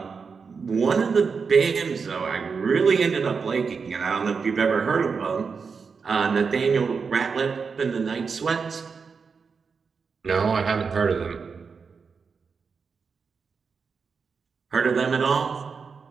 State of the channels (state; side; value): quieter; left; 5.4 dB